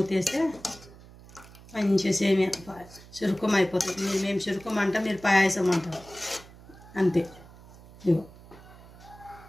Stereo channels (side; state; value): right; noise; hum, 21 dB below the sound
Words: మంచిగా సేమియా చిరుకుమ అయిపోతుంది. మేము చిరుకుమ అంటాం, మీరు పాయసం అంటారు, అంతే. ఇగో